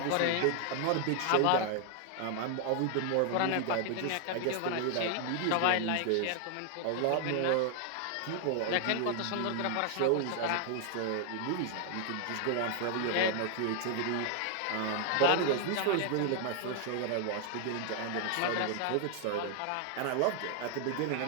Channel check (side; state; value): both; different; correlation 0.00